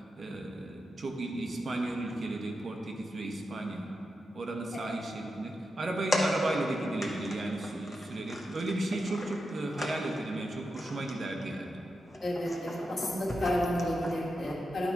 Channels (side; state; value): both; normal; correlation 0.88